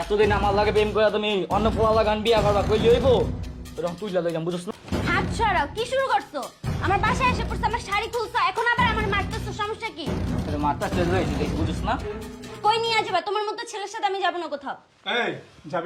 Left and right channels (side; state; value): both; identical; correlation 1.00